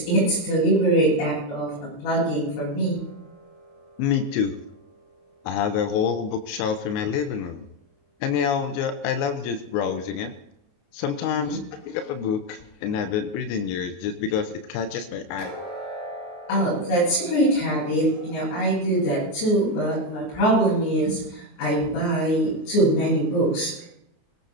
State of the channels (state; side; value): late; right; 29 ms